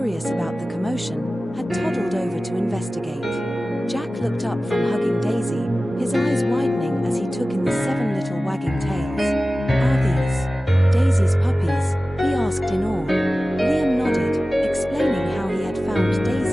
about the commotion, had toddled over to investigate. Jack looked up from hugging Daisy, his eyes widening as he took in the 7 little wagging tails. "Are these Daisy's puppies?" he asked in awe. Liam nodded, explaining how he had found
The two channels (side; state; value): both; normal; correlation 0.96